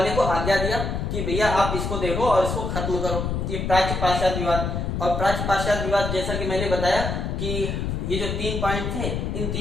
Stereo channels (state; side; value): noise; left; rumble, 2 dB below the sound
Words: को आज्ञा दिया कि भैया आप इसको देखो और इसको खत्म करो, ये प्राच्य पाश्चात्य विवाद। और प्राच्य पाश्चात्य विवाद जैसा कि मैंने बताया कि ये जो 3 पॉइंट थे, इन